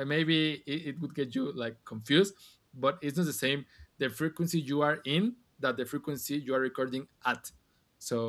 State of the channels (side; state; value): both; identical; correlation 1.00